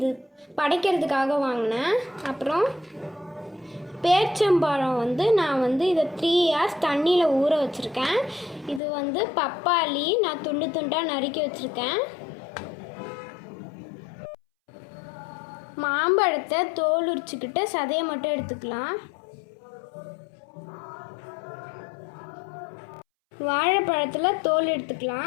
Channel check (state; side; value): drops out; right; at 8.8 s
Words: படைக்கிறதுக்காக வாங்கினேன். அப்புறம் பேரிச்சம்பழம் நான் இதை 3 hours தண்ணியில் ஊற வச்சுருக்கேன். இது பப்பாளி நான் துண்டு துண்டாக நறுக்கி வச்சுருக்கேன். மாம்பழத்தை தோல் உரிச்சுக்கிட்டு சதையை மட்டும் எடுத்துக்கலாம். வாழைப்பழத்தில் தோல்